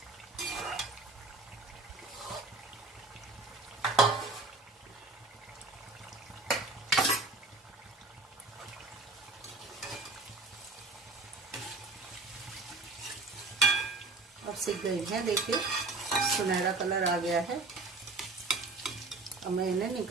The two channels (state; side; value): quieter; left; 3.5 dB